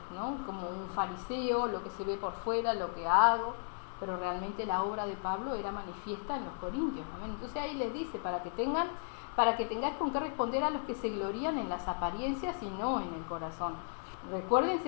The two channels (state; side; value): silent; right; digital silence